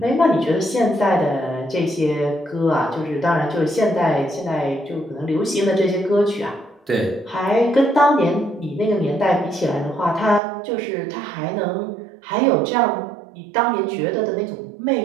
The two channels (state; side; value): drops out; left; at 10.4 s